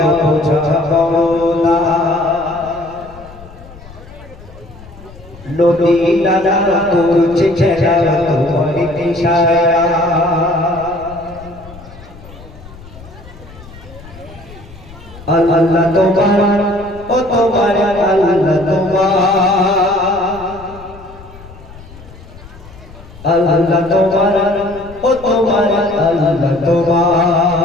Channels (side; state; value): left; noise; rumble, 19 dB below the sound